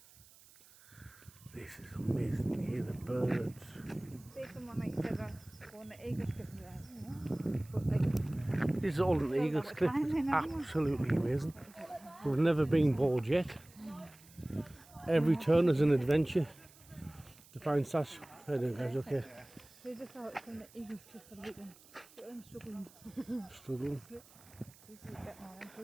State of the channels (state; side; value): noise; right; hiss, 24 dB below the sound